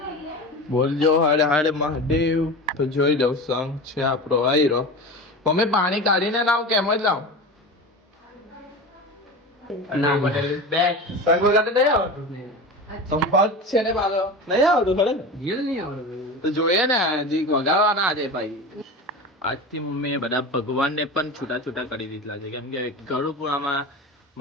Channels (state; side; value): normal; both; correlation 0.29